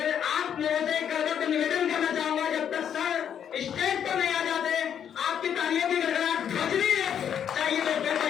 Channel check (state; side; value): quieter; right; 8.8 dB